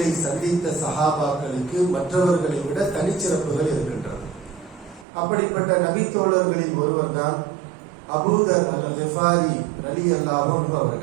சந்தித்த சஹாபாக்களுக்கு மற்றவர்களை விட தனிச்சிறப்புகள் இருக்கின்றது. அப்படிப்பட்ட நபி தோழர்களில் ஒருவர் தான் அபூ தர் அல்-கிஃபாரி ரலியல்லாஹு அன்ஹு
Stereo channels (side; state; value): left; drops out; at 5.1 s